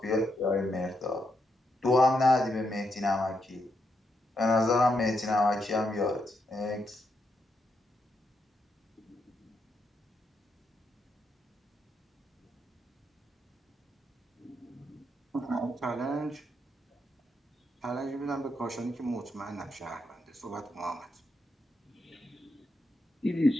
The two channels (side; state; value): both; normal; correlation 0.81